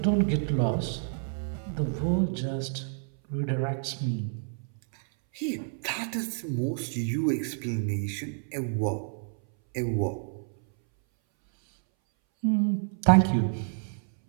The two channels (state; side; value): silent; left; 59 dB below the other